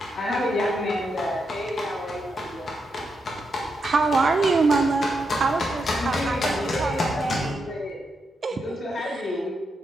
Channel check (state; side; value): normal; both; correlation 0.83